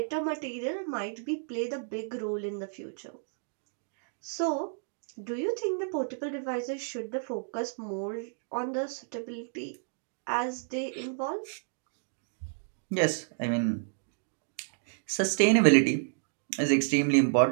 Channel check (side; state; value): left; silent; digital silence